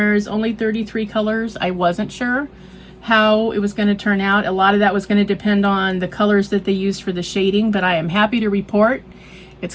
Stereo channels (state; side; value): identical; both; correlation 1.00